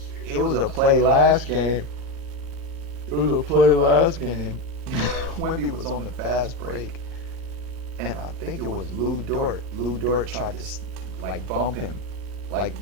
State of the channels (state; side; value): late; right; 3.1 ms